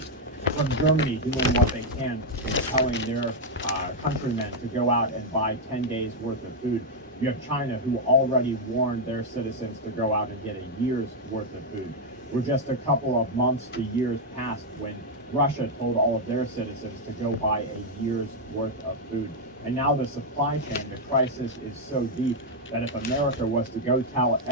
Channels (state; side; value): normal; both; correlation 0.00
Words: From Germany doing what they can and telling their countrymen to go out and buy 10 days worth of food. You have China, who already warned their citizens to go out and get a year's worth of food. We're just a couple of months to years past when Russia told all of their citizens to go buy a year's worth of food. And now the supply chain, the crisis is so deep that if America was to go tell